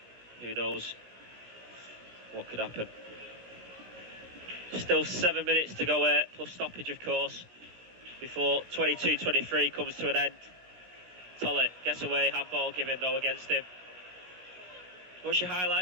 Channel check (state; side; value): late; left; 16 ms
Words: Who knows what could happen. Still 7 minutes to go here, plus stoppage, of course, before 22-23 comes to an end. Tollett gets away, handball given though against him. What's your